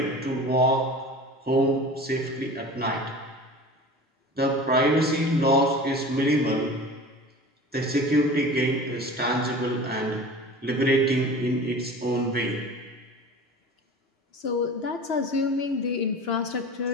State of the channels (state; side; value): normal; both; correlation 0.37